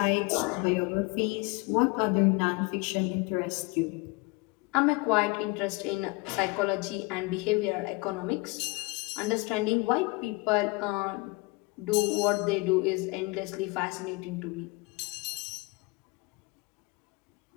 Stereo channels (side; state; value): right; quieter; 25.7 dB